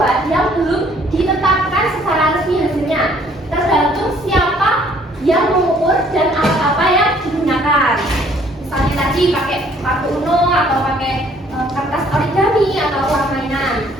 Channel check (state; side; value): normal; both; correlation 0.61